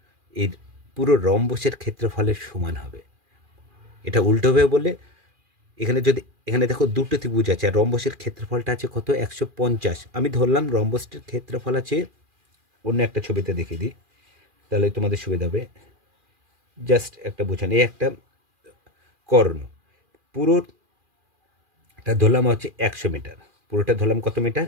এর পুরো রম্বসের ক্ষেত্রফলের সমান হবে। এটা উল্টোভাবে বললে, এখানে দেখো দুটো ত্রিভুজ আছে আর রম্বসের ক্ষেত্রফলটা আছে কত 150। আমি ধরলাম রম্বসটির ক্ষেত্রফল আছে, অন্য একটা ছবিতে দেখিয়ে দিই তাহলে তোমাদের সুবিধা হবে। জাস্ট একটা বোঝান, এই একটা কর্ণ, পুরোটা ধরলাম হচ্ছে 100 মিটার, পুরোটা ধরলাম কত মিটার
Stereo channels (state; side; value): late; left; 2.4 ms